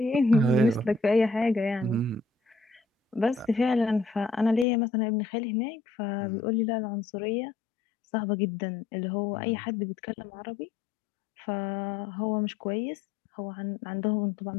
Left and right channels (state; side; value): drops out; right; at 4.7 s